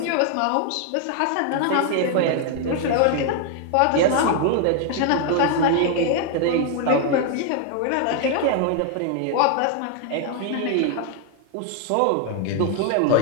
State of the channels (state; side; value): different; both; correlation 0.00